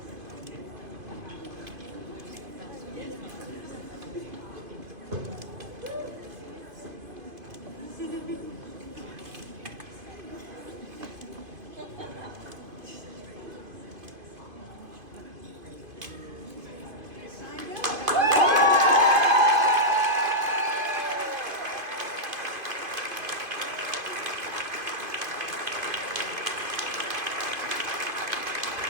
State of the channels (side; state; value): left; late; 2.5 ms